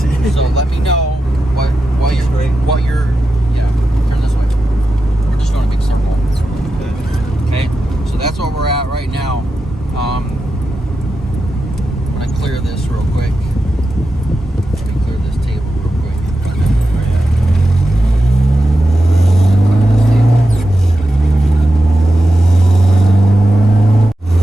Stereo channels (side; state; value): both; normal; correlation 0.90